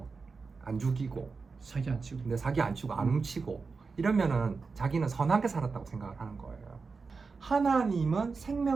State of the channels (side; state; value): left; quieter; 4.6 dB